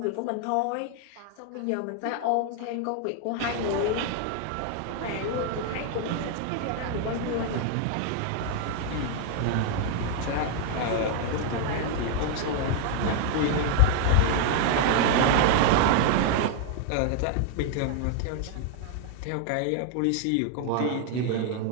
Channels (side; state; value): both; different; correlation 0.00